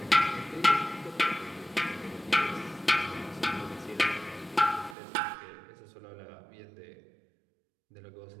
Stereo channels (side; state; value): left; drops out; at 5.0 s